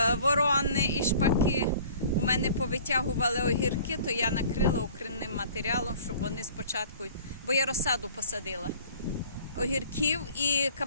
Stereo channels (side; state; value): both; inverted; correlation -0.49